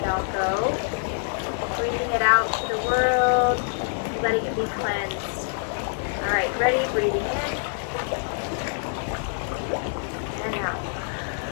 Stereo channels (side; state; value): right; silent; 61 dB below the other